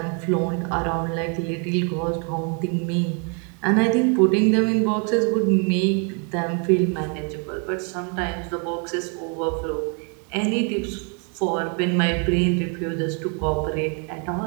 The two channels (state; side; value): quieter; left; 38.1 dB